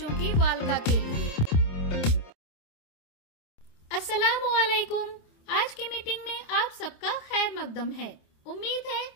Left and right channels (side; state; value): right; late; 27 ms